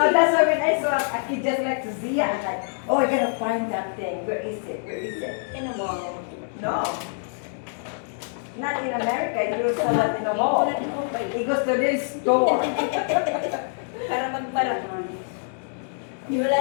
that's why when I saw a kid just like to see it, I'm like, oh, I gotta find that thing. Where is it? Where is it? In a mall. No. Not in America. You saw that in a mall. He goes to this store. Para magpara. Wala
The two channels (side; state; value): right; silent; digital silence